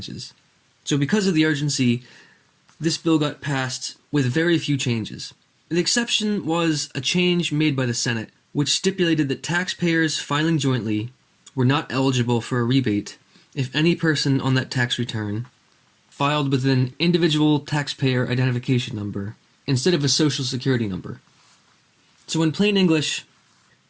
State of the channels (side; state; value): both; identical; correlation 1.00